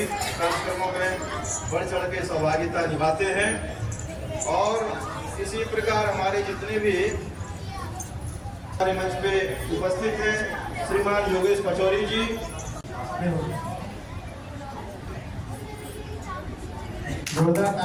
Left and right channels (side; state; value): both; identical; correlation 1.00